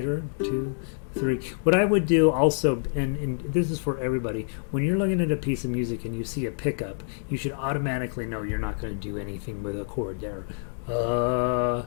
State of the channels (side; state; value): right; silent; digital silence